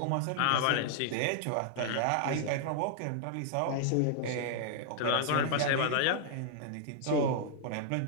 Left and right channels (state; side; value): different; both; correlation -0.01